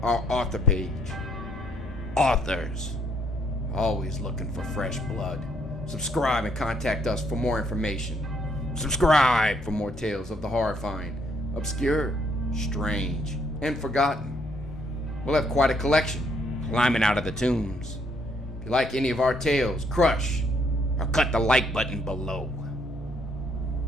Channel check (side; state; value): both; normal; correlation 0.69